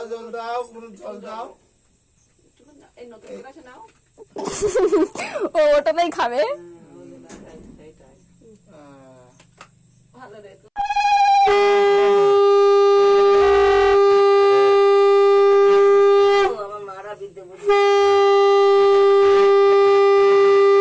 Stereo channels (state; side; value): identical; both; correlation 1.00